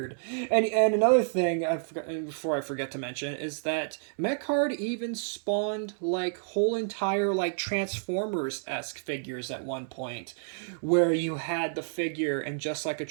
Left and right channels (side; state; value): left; silent; digital silence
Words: And another thing before I forget to mention is that Mecard even spawned like whole entire like Transformers-esque figures at one point, where you had the figure and just like a